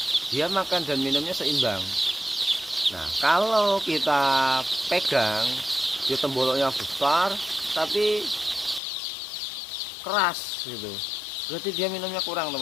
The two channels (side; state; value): right; drops out; at 8.8 s